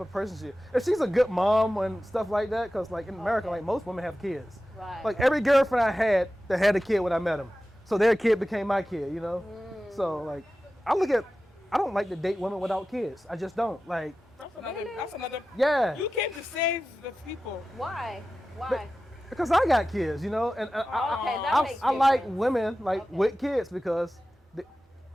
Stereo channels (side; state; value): both; normal; correlation 0.94